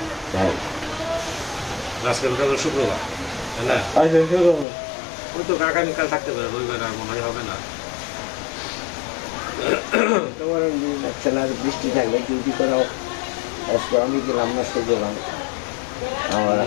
তাই আজকে শুক্রবার, তাই না? ওই তো আগামীকাল থাকতে পারে, রবিবার আর মনে হবে না। তোমার বৃষ্টি থাকলে ডিউটি করা আমি গেলাম না, সে গেলাম।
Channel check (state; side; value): drops out; right; at 4.7 s